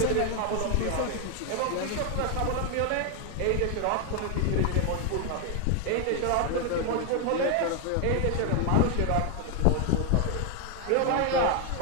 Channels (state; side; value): different; both; correlation 0.01